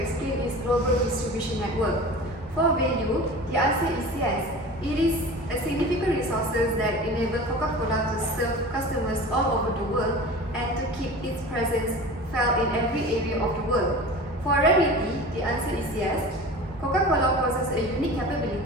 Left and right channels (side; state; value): both; normal; correlation 0.36